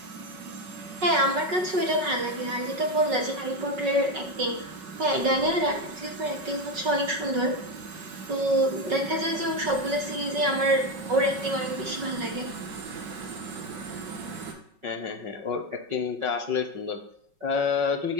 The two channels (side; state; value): left; late; 5.4 ms